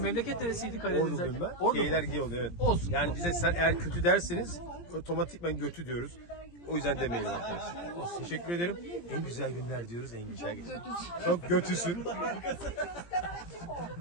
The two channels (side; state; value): right; late; 17 ms